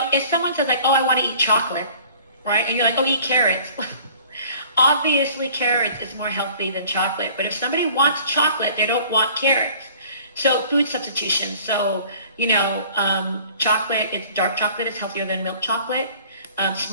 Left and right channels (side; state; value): both; inverted; correlation -0.49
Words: someone says like, oh, I want to eat chocolate, right? And you're like, oh, eat carrots. Obviously, carrots is more healthy than chocolate. But if somebody wants chocolate, they don't want carrots. So food substitution. So, chocolate, dark chocolate is healthier than milk chocolate.